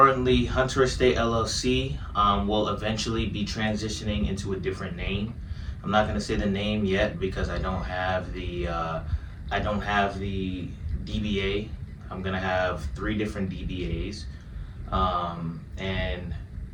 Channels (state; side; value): identical; both; correlation 1.00